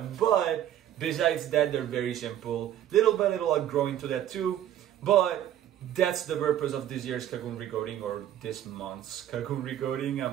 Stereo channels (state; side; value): quieter; left; 11.4 dB